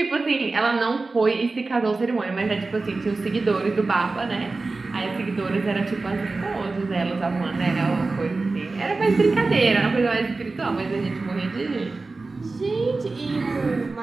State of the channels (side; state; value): left; quieter; 3.6 dB